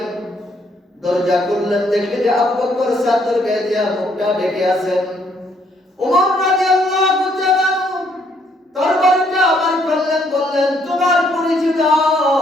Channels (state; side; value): normal; both; correlation 0.69